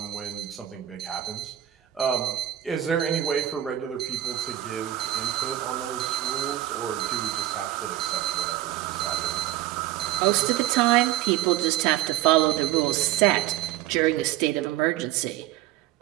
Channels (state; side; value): quieter; left; 13.6 dB